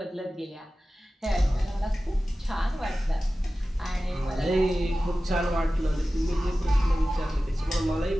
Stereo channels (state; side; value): normal; both; correlation 0.95